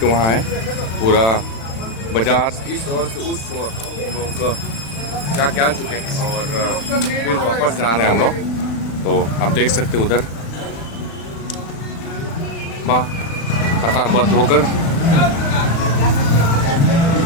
वहाँ है, पूरा बाजार इस ओर से उस ओर हम लोग क्या चुके हैं और फिर वापस जा रहे हैं हम लोग। तो आप देख सकते उधर वाह कतारबद्ध होकर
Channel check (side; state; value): right; late; 36 ms